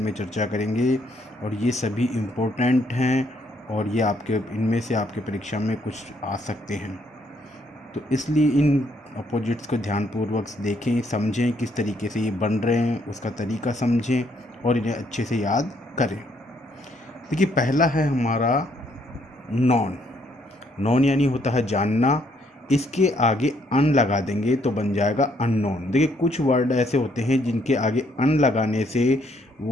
चर्चा करेंगे और ये सभी इम्पोर्टेंट हैं और ये आपके इनमें से आपके परीक्षा में कुछ आ सकते हैं। तो इसलिए इन अपोजिट्स को ध्यानपूर्वक देखें, समझें किस तरीके से ये बन रहे हैं, उसका तरीका समझें और इन्हें अच्छे से याद करें। देखिए, पहला है हमारा नॉन। नॉन यानी होता है जानना। इसके आगे अन लगा देंगे तो बन जाएगा अननोन। देखिए, कुछ वर्ड ऐसे होते हैं जिनके आगे अन लगाने से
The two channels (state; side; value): normal; both; correlation 0.70